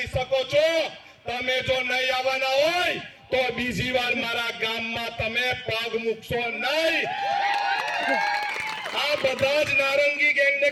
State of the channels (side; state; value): both; identical; correlation 1.00